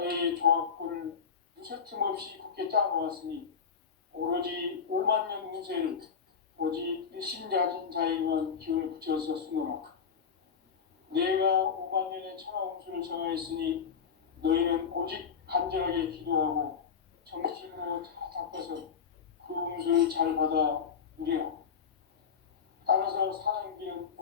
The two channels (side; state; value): right; quieter; 6.6 dB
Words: 조합권을 무쇠 틈 없이 굳게 짜놓았으니 오로지 5만 년 운세를 오직 일심자진 자에게만 기운을 붙여서 쓰노라. 내가 5만 년의 천하 운수를 정하였으니 너희는 오직 간절하게 기도하고 정심으로 잘 닦아서 그 운수를 잘 받아 누리라. 따라서 사는 길은